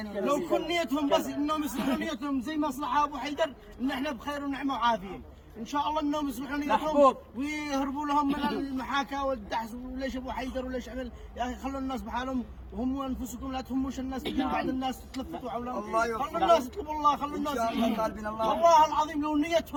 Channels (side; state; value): both; identical; correlation 1.00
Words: لو كل نيتهم بس انهم يصلحوا نيتهم زي مصلحه ابو حيدر، ان احنا بخير ونعمه وعافيه ان شاء الله، انهم يصلحوا نيتهم ويهربوا لهم من المحاكاه والدحس، وليش ابو حيدر وليش عمل. يا اخي خلوا الناس بحالهم، وهم انفسكم لا تهموش الناس، بعد الناس تلفتوا حولهم. خلوا الناس يطلبوا الله، خلوا الناس والله العظيم لو